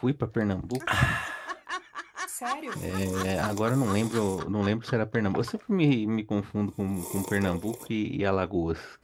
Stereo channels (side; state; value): both; identical; correlation 1.00